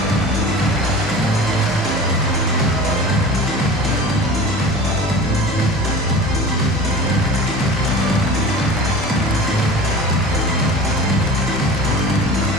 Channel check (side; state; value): both; normal; correlation 0.37